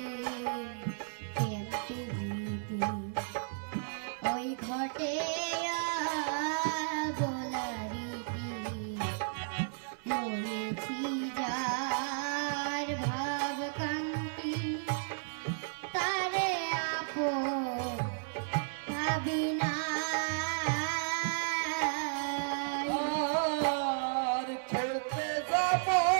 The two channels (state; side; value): silent; left; 55 dB below the other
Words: কেমতে গীতি ওই ঘটে গোলারিতি লয়েছি যার ভাব কান্তি তারে আপন ভাবি না আর খেতে যাব